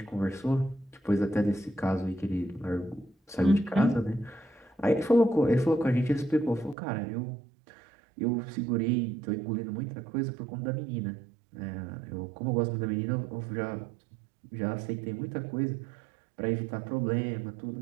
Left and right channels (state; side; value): drops out; left; at 6.8 s